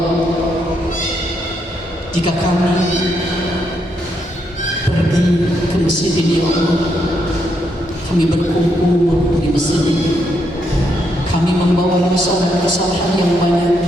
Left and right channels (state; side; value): normal; both; correlation 0.77